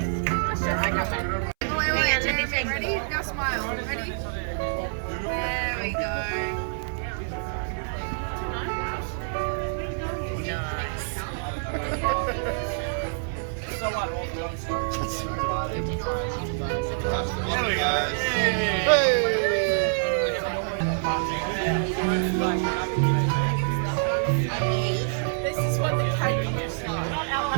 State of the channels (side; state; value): left; silent; 61 dB below the other